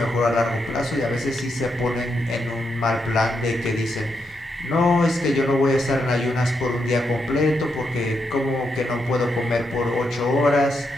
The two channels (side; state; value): both; normal; correlation 0.82